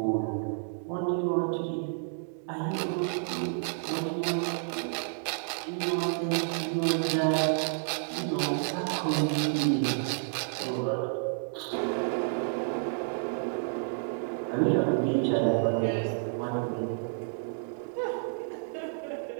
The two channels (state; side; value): silent; left; digital silence